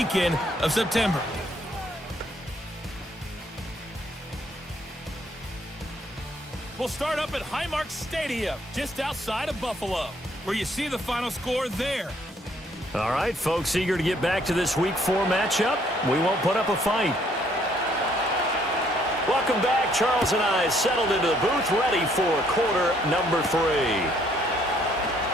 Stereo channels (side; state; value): both; normal; correlation 0.66